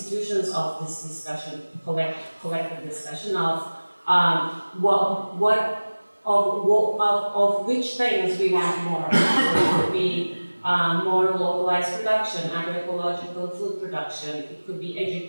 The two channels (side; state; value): both; inverted; correlation -1.00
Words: of this discussion, collective discussion of of which things we want more. So it could be more localized production, agroecological food production. It could be